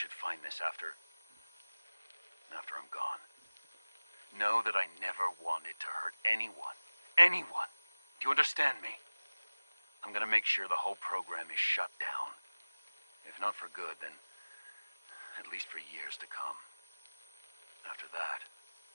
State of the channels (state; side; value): inverted; both; correlation -1.00